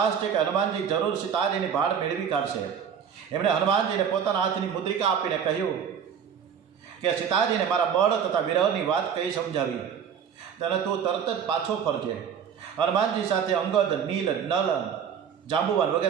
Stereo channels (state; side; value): quieter; left; 7.7 dB